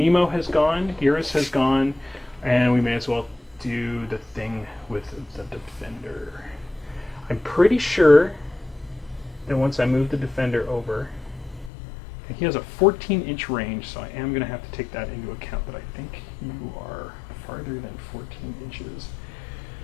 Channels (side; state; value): right; drops out; at 11.7 s